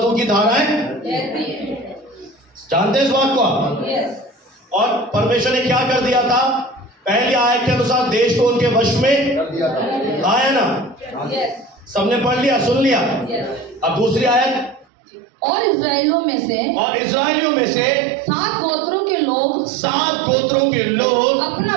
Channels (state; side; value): drops out; left; at 14.9 s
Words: की धाराएं। जानते हैं इस बात को आप? और परमेश्वर ने क्या कर दिया था? पहली आयत के अनुसार देश को उनके वश में कर दिया था। आया ना? सबने पढ़ लिया, सुन लिया। अब दूसरी आयत, और इस्राएलियों में से 7 गोत्रों के लोग अपना